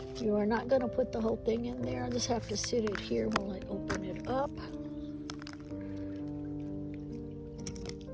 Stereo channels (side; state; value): both; identical; correlation 1.00